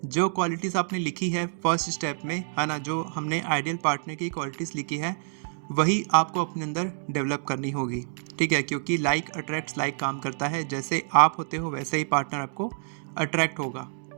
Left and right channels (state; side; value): silent; left; digital silence